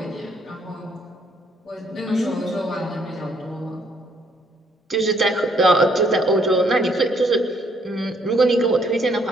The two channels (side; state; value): both; normal; correlation 0.68